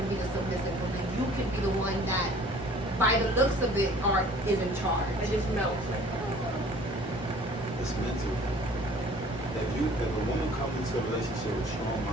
be the submissive woman? You can be the one that, by the looks of it, is in charge. It just melts. It's mental. If a woman comes into a relationship with strong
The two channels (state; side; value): normal; both; correlation 0.51